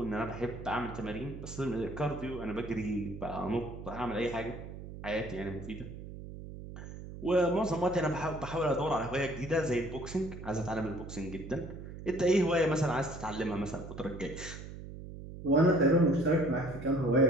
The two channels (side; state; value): right; noise; hum, 11 dB below the sound